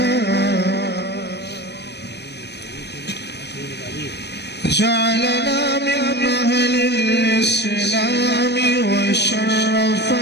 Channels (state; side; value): late; right; 0.49 ms